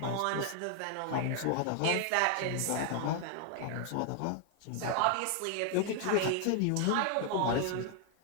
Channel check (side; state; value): both; different; correlation 0.00